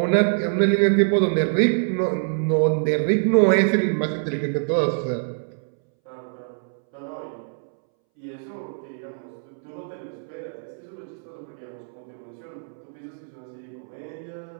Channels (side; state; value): left; silent; 62 dB below the other